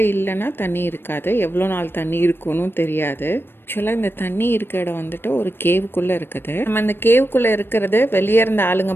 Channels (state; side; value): late; right; 0.10 ms